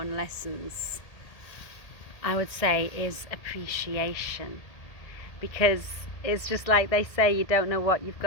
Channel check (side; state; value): right; late; 1.8 ms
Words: lessons, I would say, is appreciation, because it's just like they say, you don't know what you've